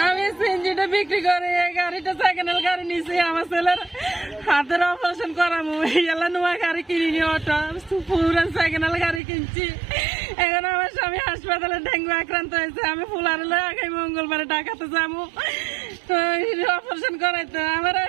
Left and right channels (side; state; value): left; drops out; at 9.2 s